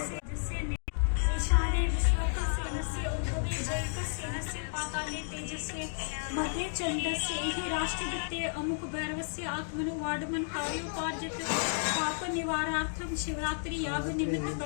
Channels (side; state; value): right; silent; digital silence